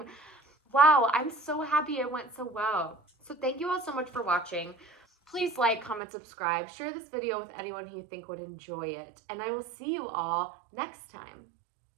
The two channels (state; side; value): drops out; left; at 6.0 s